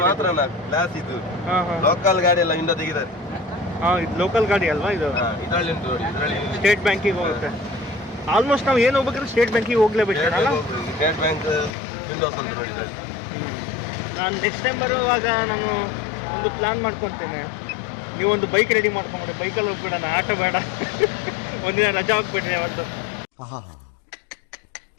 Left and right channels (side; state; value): right; drops out; at 11.7 s